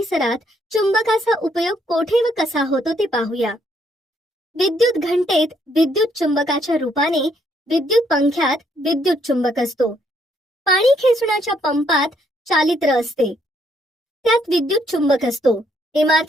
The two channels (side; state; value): both; normal; correlation 0.71